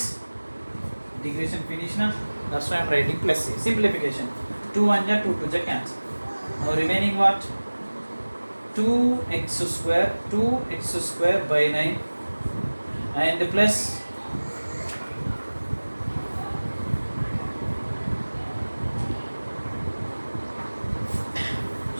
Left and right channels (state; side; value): inverted; both; correlation -1.00